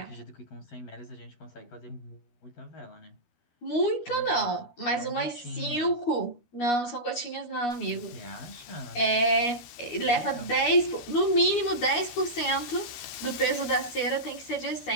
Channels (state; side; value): late; right; 12 ms